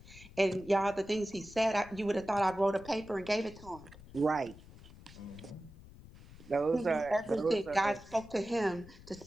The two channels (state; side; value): noise; left; rumble, 19 dB below the sound